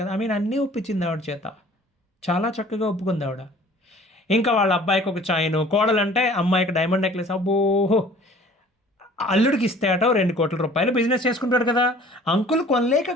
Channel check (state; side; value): normal; both; correlation 0.50